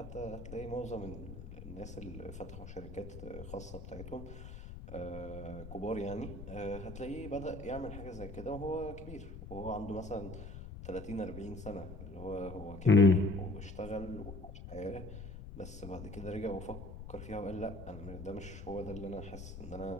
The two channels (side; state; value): left; noise; rumble, 10 dB below the sound